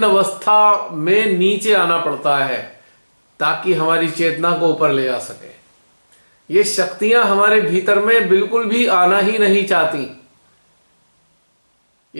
अवस्था में नीचे आना पड़ता है ताकि हमारी चेतना को ऊपर ले जा सके। ये शक्तियां हमारे भीतर में बिल्कुल भी आना ही नहीं चाहती।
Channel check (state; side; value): inverted; both; correlation -1.00